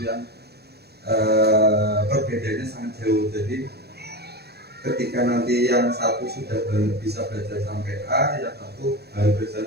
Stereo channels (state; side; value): late; left; 0.47 ms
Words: yang perbedaannya sangat jauh. Jadi ketika nanti yang satu sudah bisa belajar sampai A, yang satu baru belajar